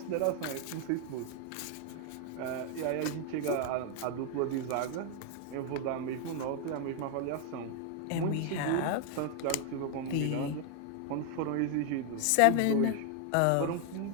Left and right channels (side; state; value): both; different; correlation 0.01